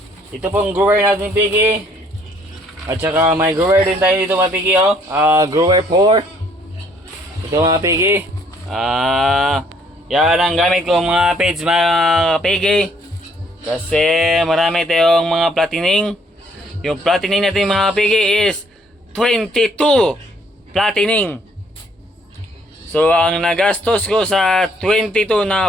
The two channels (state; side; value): normal; both; correlation 0.64